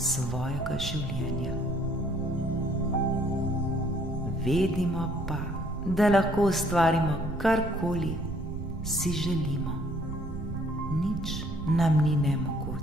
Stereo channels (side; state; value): right; noise; rumble, 9 dB below the sound